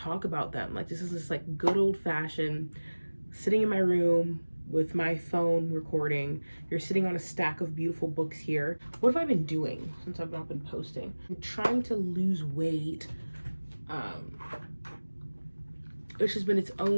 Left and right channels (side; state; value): both; inverted; correlation -1.00